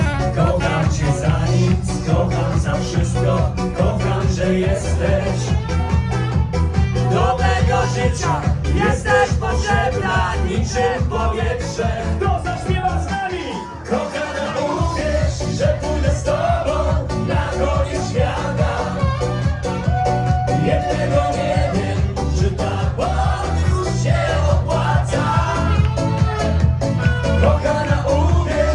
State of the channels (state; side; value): identical; both; correlation 1.00